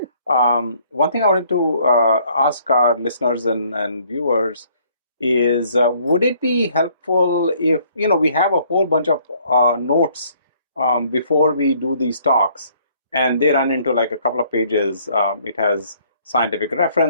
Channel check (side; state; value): both; inverted; correlation -0.62